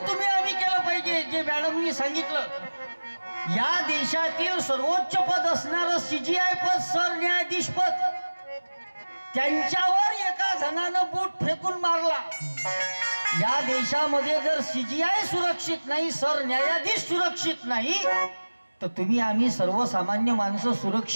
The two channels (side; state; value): both; inverted; correlation -1.00